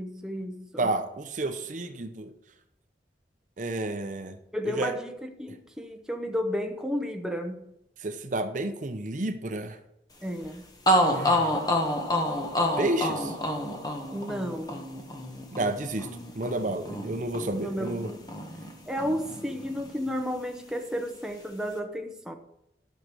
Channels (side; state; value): both; normal; correlation 0.39